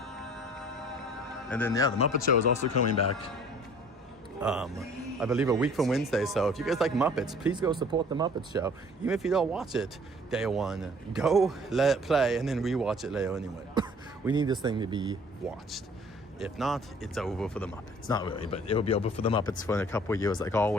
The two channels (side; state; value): both; normal; correlation 0.52